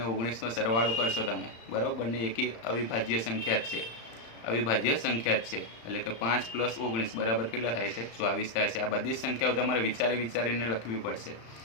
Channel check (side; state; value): right; late; 35 ms